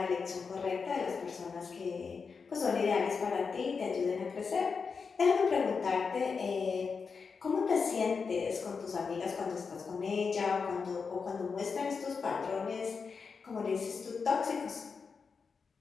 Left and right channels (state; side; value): quieter; right; 5.3 dB